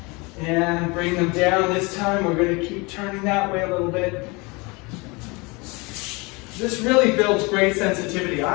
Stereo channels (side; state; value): right; quieter; 26.9 dB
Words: and bring them down. This time we're going to keep turning that way a little bit. This really builds great sensitivity.